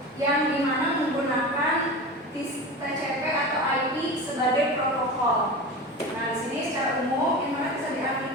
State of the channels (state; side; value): normal; both; correlation 0.29